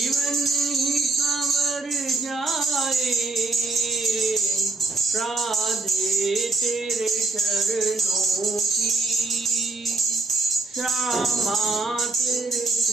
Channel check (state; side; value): quieter; left; 3.5 dB